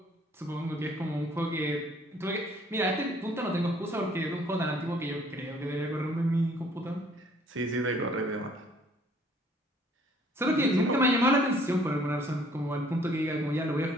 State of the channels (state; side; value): normal; both; correlation 0.60